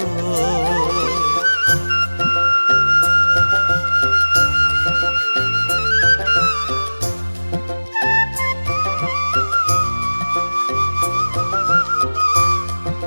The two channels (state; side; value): inverted; both; correlation -1.00